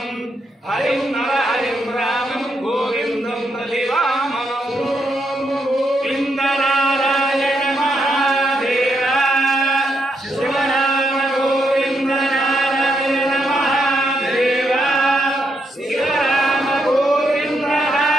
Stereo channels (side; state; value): both; normal; correlation 0.79